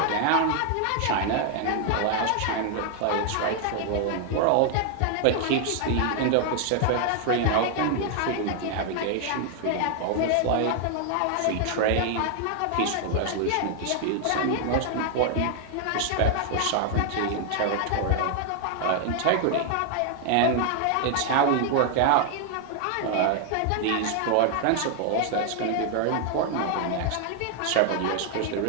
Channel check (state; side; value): different; both; correlation 0.00